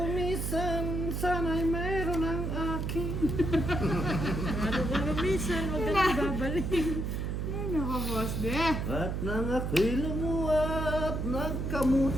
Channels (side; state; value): right; noise; hum, 2 dB below the sound